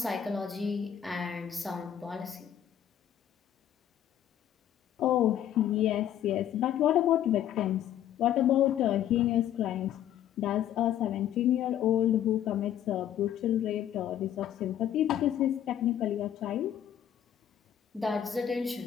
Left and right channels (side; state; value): right; quieter; 10.6 dB